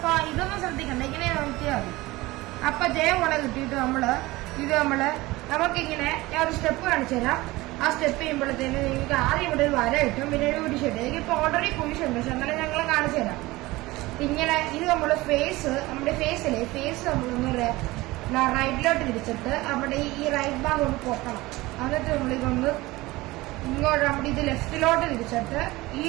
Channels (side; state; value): left; quieter; 20.0 dB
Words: ഇതൊന്നും ശ്രദ്ധിക്കണ്ട, ഇങ്ങനെ നോക്കിയാൽ മതി. അപ്പൊ ജെ പോലെ കിട്ടിയിട്ട് നമുക്കിങ്ങനെ ഞാൻ ഒരു സ്റ്റെപ്പ് കാണിച്ചു തരാം. ആ സ്റ്റെപ്പ് ചെയ്യുമ്പോഴത്തേന് നിങ്ങൾക്ക് ആദ്യം ഇവിടെ ഒരു വര കിട്ടും, പിന്നെ ഒരു കുരിശുണ്ട്. എനിക്കിപ്പോൾ ഓൾറെഡി കുരിശുണ്ട്, പക്ഷെ എന്നാലും ഞങ്ങൾ കാണിച്ചു തരാം. ഇങ്ങനെ ഇത് നമ്മുടെ ഫേസ് നമ്മളൊന്ന് റൈറ്റിലോട്ട് തിരിച്ചിട്ട് അവിടെ ഈ റൈറ്റ് ഭാഗം ഒന്ന് പൊക്കണം. എന്നിട്ട് നമ്മളിതൊന്ന് ഇങ്ങോട്ട് നമ്മുടെ ഇത് ലെഫ്റ്റിലോട്ട് തിരിച്ചിട്ട് ഈ